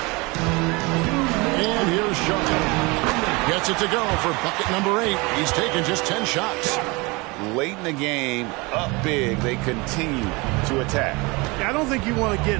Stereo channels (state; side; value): quieter; left; 25.7 dB